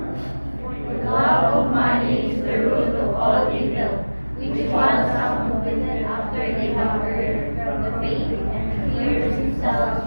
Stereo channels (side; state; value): both; inverted; correlation -1.00